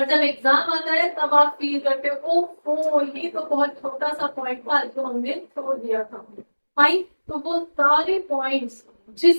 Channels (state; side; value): inverted; both; correlation -1.00